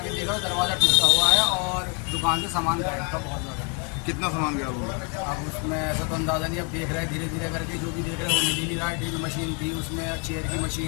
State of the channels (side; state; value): right; quieter; 35.5 dB